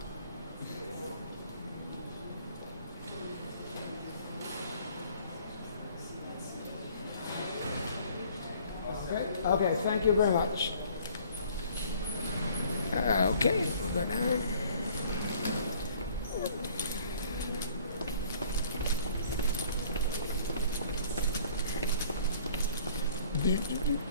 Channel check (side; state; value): both; inverted; correlation -0.55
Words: Okay, thank you very much. Okay, we'll go down.